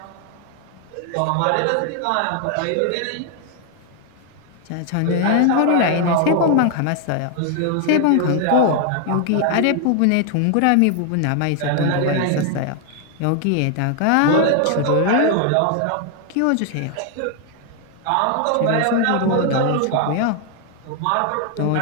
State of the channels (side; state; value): both; different; correlation 0.00